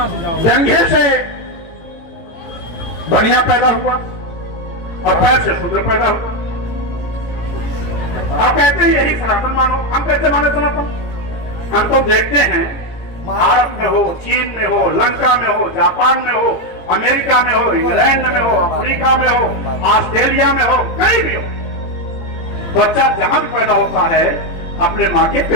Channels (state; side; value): late; right; 18 ms